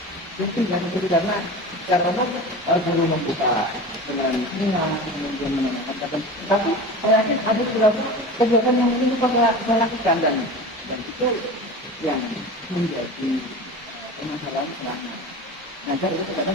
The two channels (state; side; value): normal; both; correlation 0.32